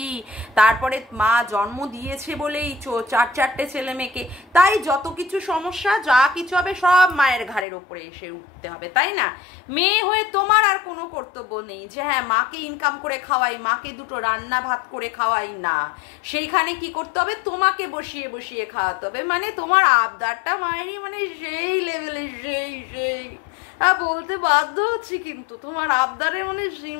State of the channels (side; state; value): right; drops out; at 7.7 s